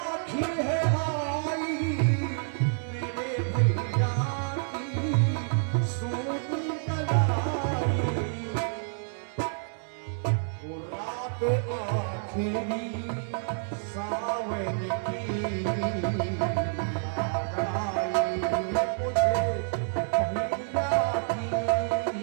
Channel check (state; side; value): silent; left; 59 dB below the other